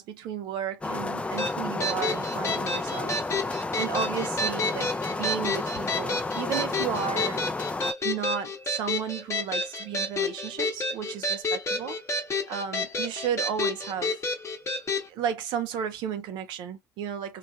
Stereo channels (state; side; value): normal; both; correlation 0.36